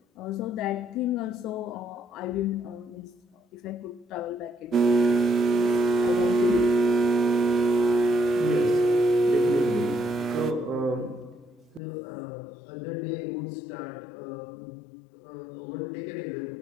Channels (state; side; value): drops out; right; at 11.8 s